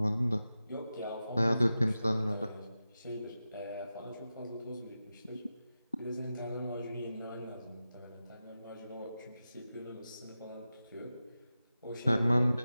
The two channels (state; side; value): inverted; both; correlation -0.93